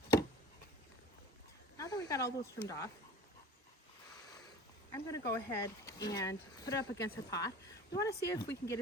Now that we got all those trimmed off, I'm going to go ahead and put it up against our pot. We want to see if we can get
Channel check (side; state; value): both; normal; correlation 0.40